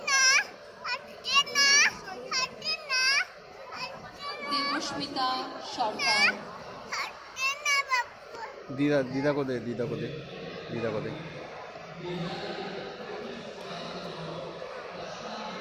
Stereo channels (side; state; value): both; identical; correlation 1.00